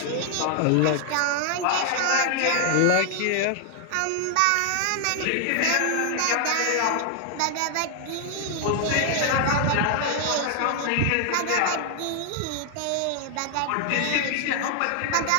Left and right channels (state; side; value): different; both; correlation 0.00